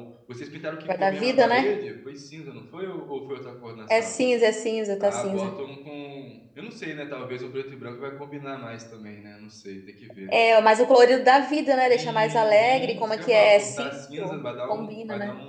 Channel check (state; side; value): identical; both; correlation 1.00